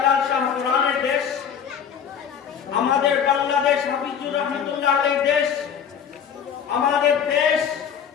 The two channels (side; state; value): right; quieter; 7.8 dB